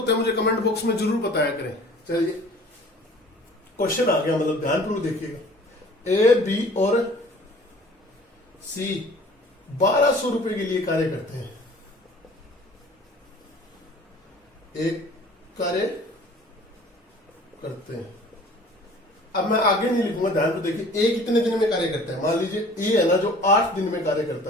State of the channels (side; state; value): both; normal; correlation 0.48